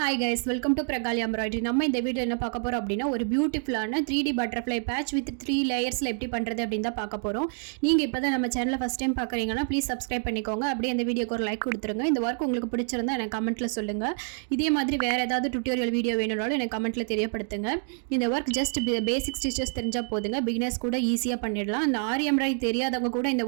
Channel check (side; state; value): left; silent; 56 dB below the other